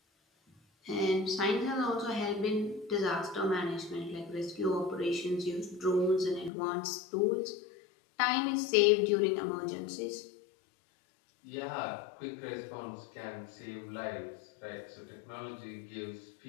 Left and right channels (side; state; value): right; drops out; at 6.5 s